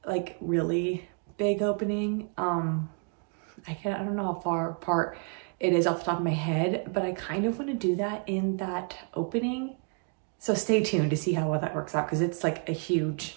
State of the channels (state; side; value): quieter; left; 39.1 dB